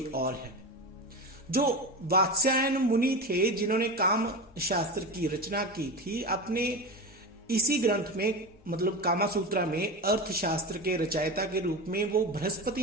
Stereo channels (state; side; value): normal; both; correlation 0.23